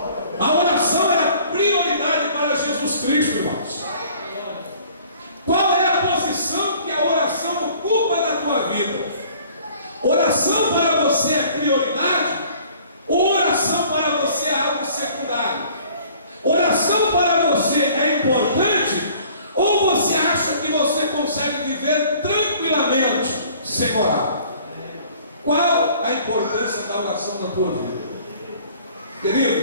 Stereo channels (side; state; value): both; inverted; correlation -0.53